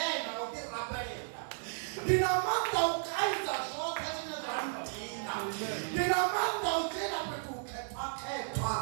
utirapelera. Ndina manda ukaidza zvote zvine zvandina. Ndina manda ujena petu uketwa.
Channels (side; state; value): left; silent; digital silence